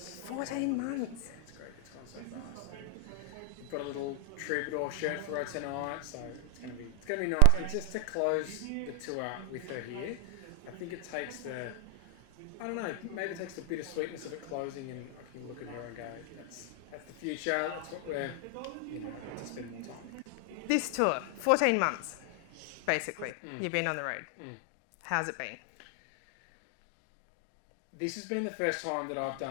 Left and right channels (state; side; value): different; both; correlation 0.00